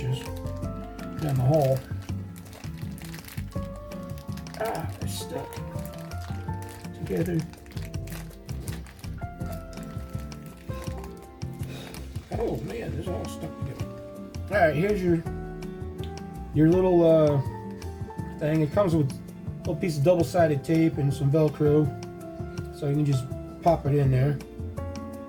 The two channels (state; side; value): identical; both; correlation 1.00